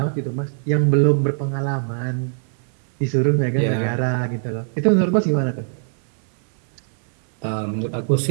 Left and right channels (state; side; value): silent; left; 59 dB below the other